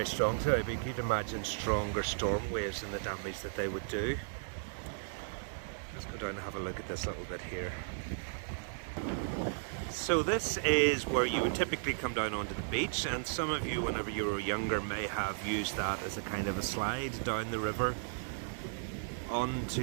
strong today, but you could imagine stronger storm waves and the damage that they would do. Let's go down and have a look at this little bit here. So this is where you would typically come down onto the beach, and some of you, whenever you were younger, may have used that as a kind of a slide down the river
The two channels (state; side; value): silent; left; digital silence